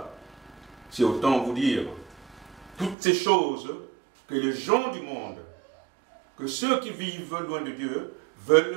C'est autant vous dire toutes ces choses que les gens du monde, que ceux qui vivent loin de Dieu,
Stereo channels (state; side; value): drops out; left; at 3.0 s